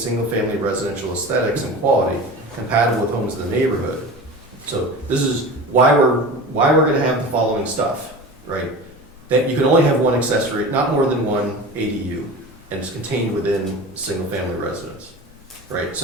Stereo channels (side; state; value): both; normal; correlation 0.33